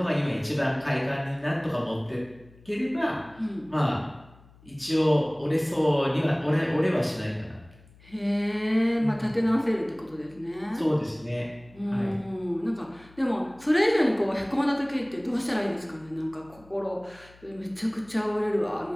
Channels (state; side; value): noise; left; hum, 25 dB below the sound